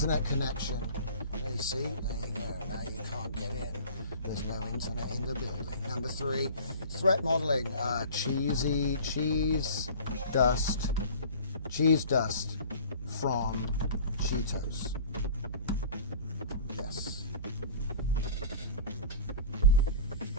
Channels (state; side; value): inverted; both; correlation -0.42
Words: connection. There you see, there you go. Now you can't get in. There's no internet in the building. Number three, threat modeling. Cheese dust from Cheetos. Yes.